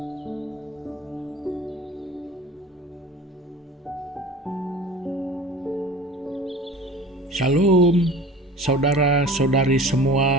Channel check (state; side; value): normal; both; correlation 0.41